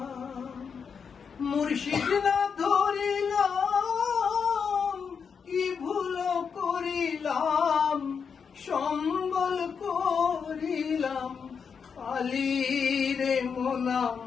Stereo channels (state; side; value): quieter; right; 6.3 dB